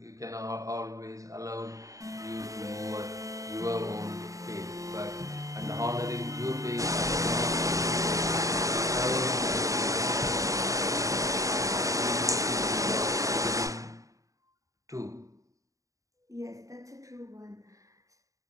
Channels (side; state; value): left; late; 0.16 ms